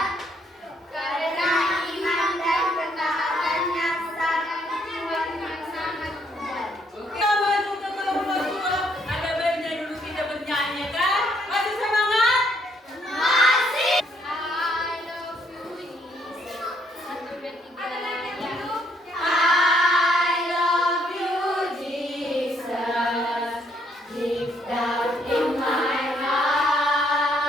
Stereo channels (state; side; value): normal; both; correlation 0.70